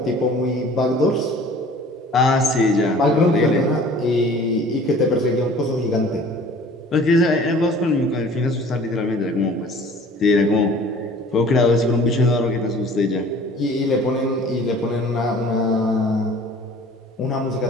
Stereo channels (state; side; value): normal; both; correlation 0.48